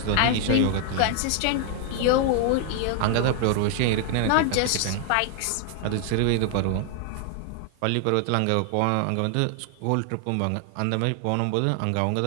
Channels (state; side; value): different; both; correlation 0.00